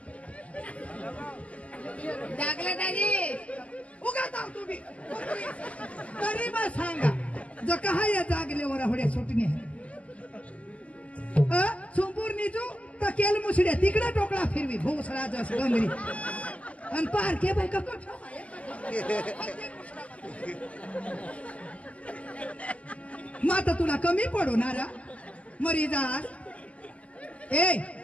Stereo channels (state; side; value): late; right; 0.066 ms